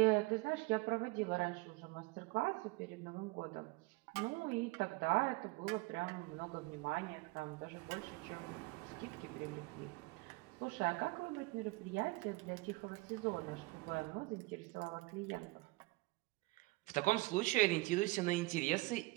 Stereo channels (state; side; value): quieter; left; 22.7 dB